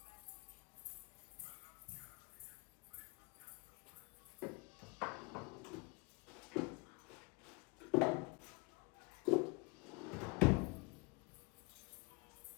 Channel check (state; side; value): quieter; right; 29.2 dB